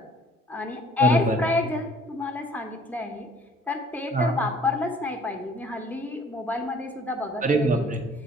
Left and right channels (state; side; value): normal; both; correlation 0.56